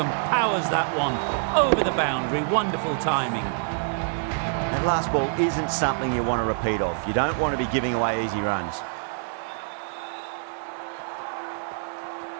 powers that one over the boundary. Wonderful timing. That last ball isn't something you want to repeat of. You don't want to be giving away easy runs.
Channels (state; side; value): silent; left; digital silence